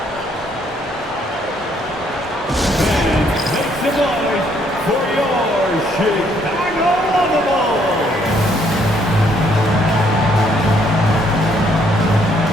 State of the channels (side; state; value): both; normal; correlation 0.68